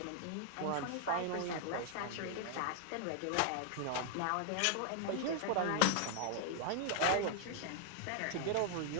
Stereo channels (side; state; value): both; different; correlation 0.00